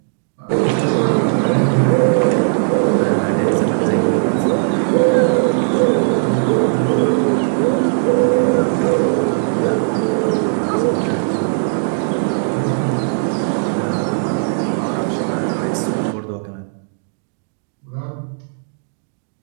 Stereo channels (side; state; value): left; silent; digital silence